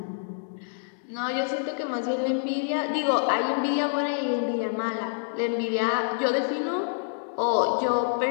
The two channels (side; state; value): right; silent; digital silence